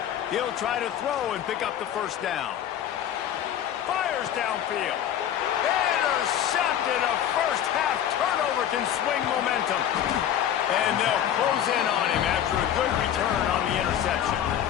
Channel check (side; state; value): right; quieter; 10.3 dB